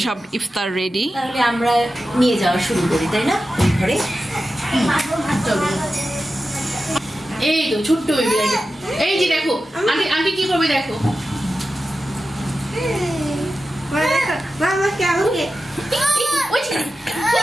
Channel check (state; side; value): normal; both; correlation 0.92